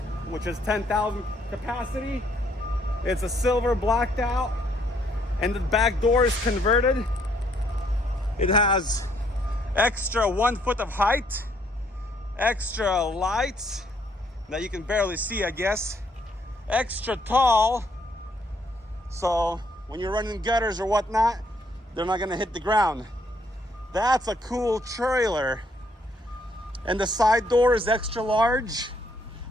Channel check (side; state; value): both; normal; correlation 0.69